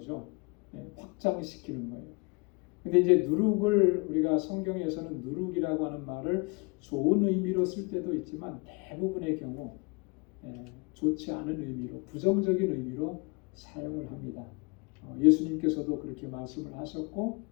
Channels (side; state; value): right; quieter; 30.0 dB